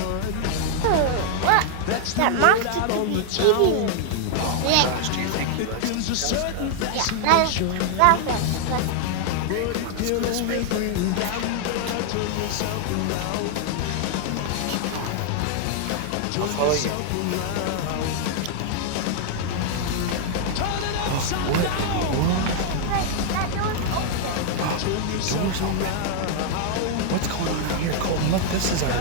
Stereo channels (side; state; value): both; different; correlation 0.00